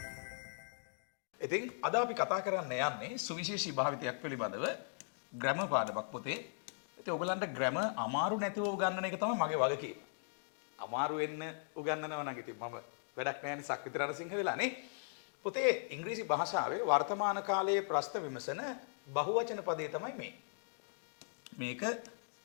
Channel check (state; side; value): silent; right; digital silence